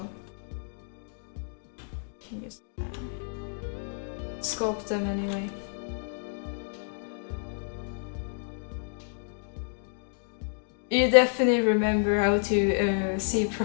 can just sculpt them anyway. You definitely remember how to see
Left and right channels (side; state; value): right; silent; digital silence